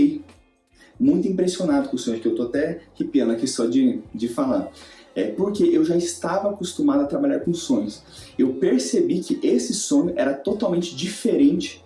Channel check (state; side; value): identical; both; correlation 1.00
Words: muito impressionado com o sonho, que eu tô até arrepiando aqui só de falar. Porque eu já estava acostumado a trabalhar com sonhos. Eu percebi que esse sonho era totalmente diferente